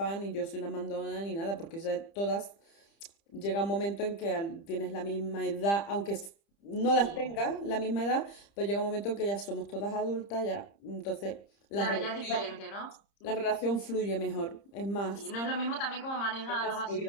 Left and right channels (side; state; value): right; late; 30 ms